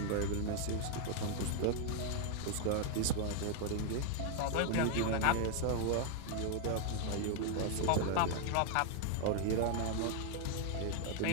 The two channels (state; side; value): different; both; correlation 0.00